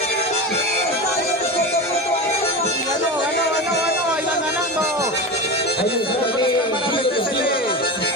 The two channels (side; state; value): both; normal; correlation 0.24